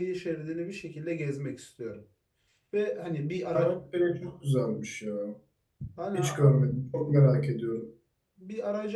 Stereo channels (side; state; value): both; identical; correlation 1.00